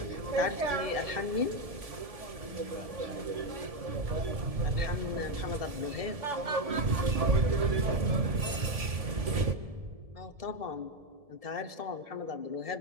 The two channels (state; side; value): late; left; 1.7 ms